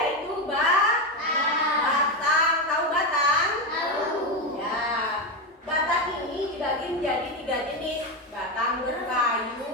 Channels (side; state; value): both; normal; correlation 0.12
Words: batang. Tahu batang? Tahu. Ya. Batang ini dibagi menjadi 3 jenis. Batang